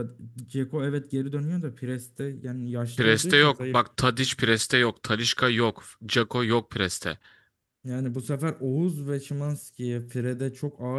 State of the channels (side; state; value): both; identical; correlation 1.00